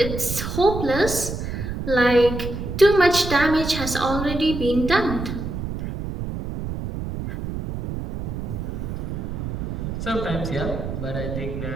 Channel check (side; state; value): right; noise; rumble, 5 dB below the sound